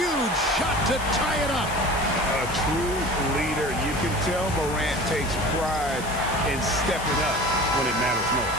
shot to tie it up. A true leader. You can tell Morant takes pride in stepping up when it matters most.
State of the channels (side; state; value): left; noise; hiss, 13 dB below the sound